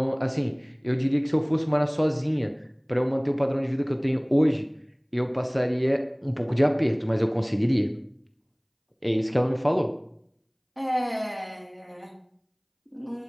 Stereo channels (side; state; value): both; identical; correlation 1.00